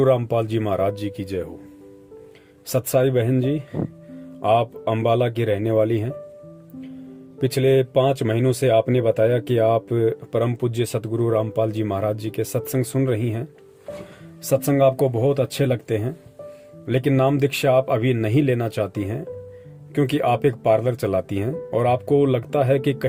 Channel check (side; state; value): both; identical; correlation 1.00